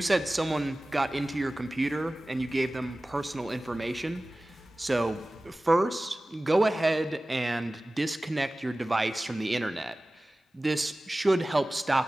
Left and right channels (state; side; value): normal; both; correlation 0.97